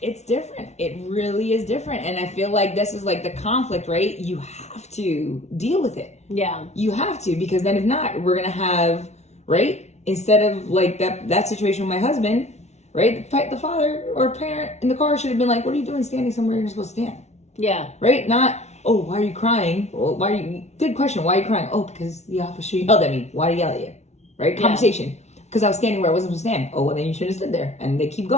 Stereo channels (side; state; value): right; late; 0.32 ms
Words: different. It really is different. And I feel like this is like the conflict, right? You have to deal with it. Yeah. You have to, because then if not, we're going to have, right? Instead of like that situation with my husband, right? The father or parent in the car should have been like, what are you doing standing somewhere you're supposed to stand? Yeah. Right? Not, oh, why are you crying? Well, good question. Why are you crying? Oh, because the officer yelled at me. Why did he yell at you? Right? Conversation. Because I was standing where I wasn't supposed to stand. Oh, well, then you should have stood there. And they keep